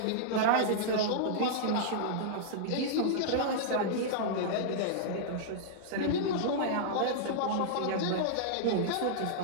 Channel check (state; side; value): different; both; correlation -0.02